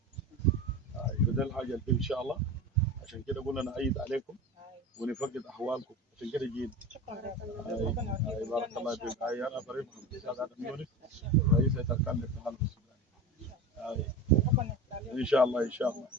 فده الحاجة اللي فيه إن شاء الله. عشان كده قلنا نعيد عليكم ونفقد احوالكم. عشان كده جينا. بارك الله فيك. انا فريق محمد ادم يونس رئيس هيئه اركان الاتحاد السوداني. ان شاء الله ان شاء الله.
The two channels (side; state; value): both; normal; correlation 0.30